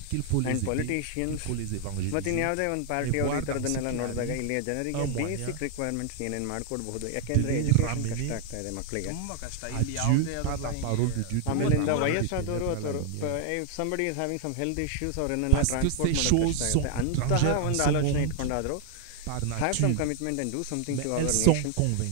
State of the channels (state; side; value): different; both; correlation 0.00